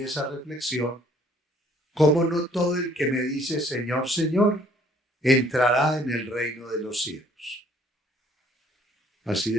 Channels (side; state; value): both; normal; correlation 0.60